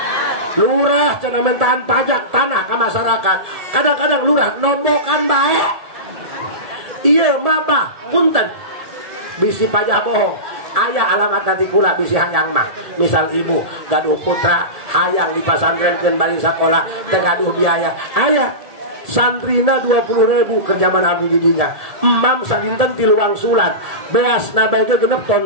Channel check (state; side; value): late; left; 1.7 ms